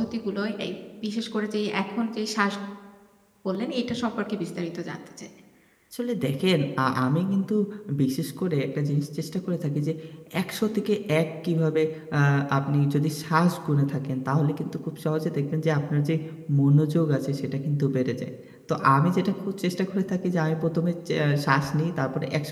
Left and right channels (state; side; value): identical; both; correlation 1.00